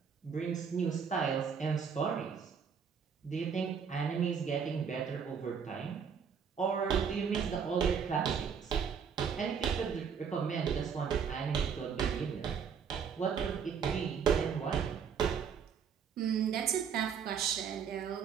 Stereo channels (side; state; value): left; quieter; 6.9 dB